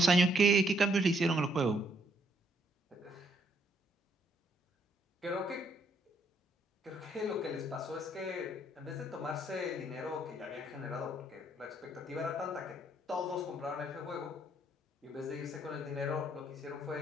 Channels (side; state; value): both; normal; correlation 0.70